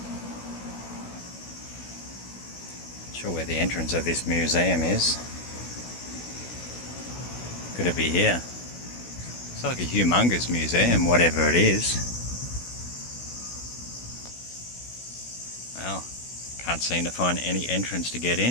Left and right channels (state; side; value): late; right; 16 ms